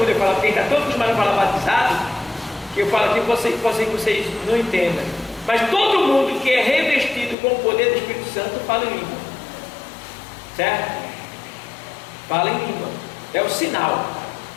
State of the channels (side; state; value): right; drops out; at 7.4 s